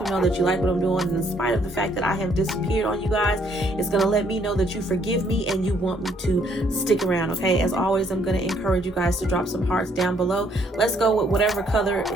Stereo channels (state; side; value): normal; both; correlation 0.67